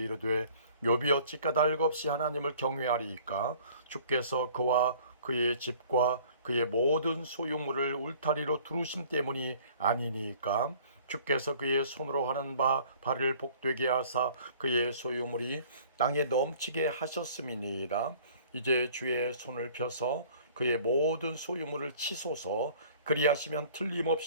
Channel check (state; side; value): inverted; both; correlation -0.52